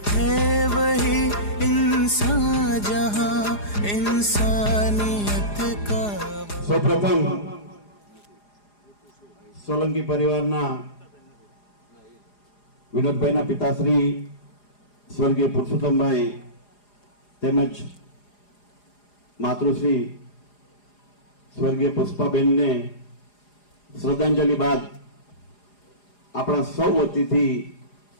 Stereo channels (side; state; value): right; late; 4.9 ms